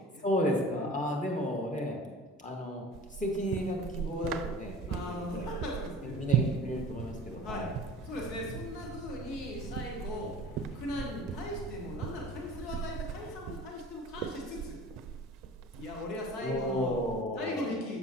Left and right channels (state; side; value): normal; both; correlation 0.41